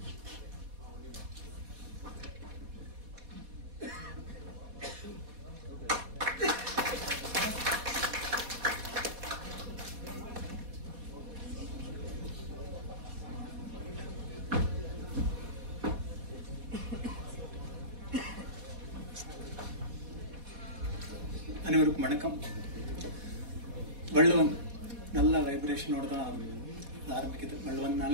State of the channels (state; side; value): late; left; 4.1 ms